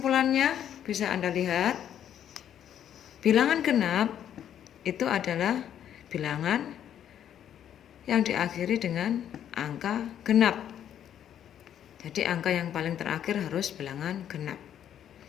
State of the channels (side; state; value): right; quieter; 10.0 dB